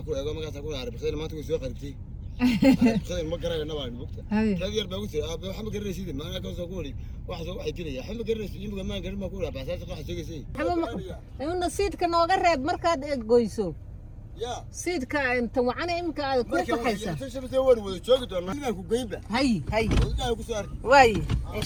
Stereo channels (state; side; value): identical; both; correlation 1.00